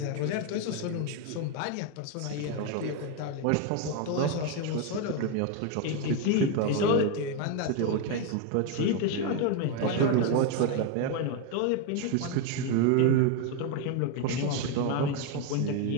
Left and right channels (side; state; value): both; different; correlation 0.01